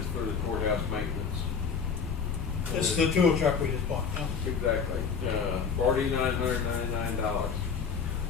for the courthouse maintenance. This is the tool truck we just bought, huh? Exactly, $4,999.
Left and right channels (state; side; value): quieter; right; 6.0 dB